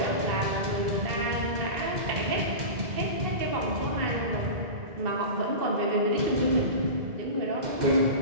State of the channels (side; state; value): left; late; 2.0 ms